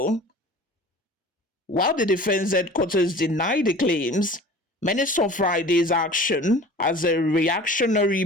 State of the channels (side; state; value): both; normal; correlation 0.42